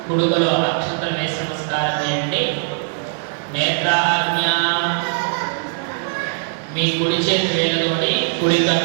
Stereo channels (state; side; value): silent; left; 66 dB below the other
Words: కుడుగలో అక్షంతలు వేసి నమస్కారం చేయండి. నేత్రాజ్ఞ మీ కుడి చేతి వేలుతోటి కుడి